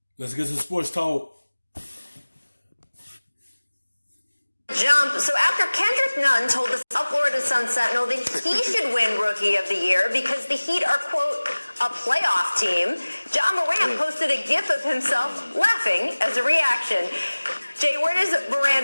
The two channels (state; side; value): inverted; both; correlation -1.00